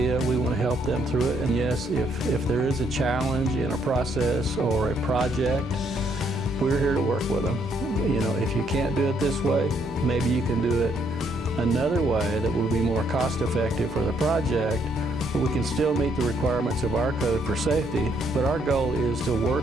we want to help them through it. And yes, if there is a challenge in a process or a project, we're here to work with them. You know, if you can't do it this way, maybe you can do it another way that will be more cost effective for the project, but we can still meet the requirements of our code for safety. But our goal is to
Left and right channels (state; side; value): normal; both; correlation 0.71